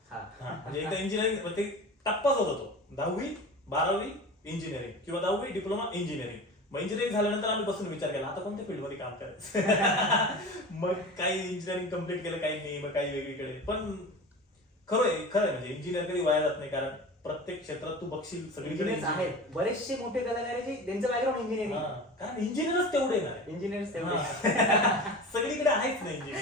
हा. हा, म्हणजे एकदा इंजिनिअरिंग ते टप्पाच होता तो. 10वी 12वी इंजिनिअरिंग किंवा 10वी डिप्लोमा इंजिनिअरिंग. मग इंजिनिअरिंग झाल्यानंतर आम्ही बसून विचार केला आता कोणत्या फील्डमध्ये काम करायचं. मग काही इंजिनिअरिंग कम्प्लीट केलं, काही नाही, मग काही वेगळीकडे. पण खरं आहे म्हणजे इंजिनिअर कधी वाया जात नाही, कारण प्रत्येक क्षेत्रात तू बघशील सगळीकडे इंजिनियर्स आहेत बरेचसे मोठे कलाकार आहेत जे त्यांचं बॅकग्राऊंड इंजिनिअरिंग. कारण इंजिनियरच तेवढे नाही. इंजिनियर्स तेवढे सगळीकडे आहेच नाही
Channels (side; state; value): both; normal; correlation 0.33